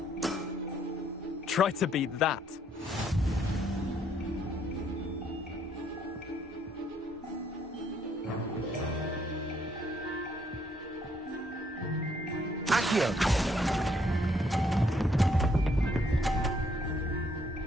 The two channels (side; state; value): both; normal; correlation 0.69